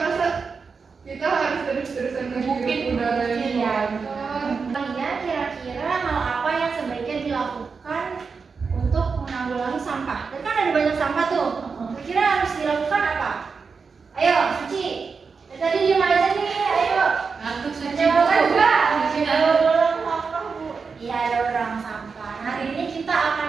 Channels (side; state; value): left; quieter; 5.1 dB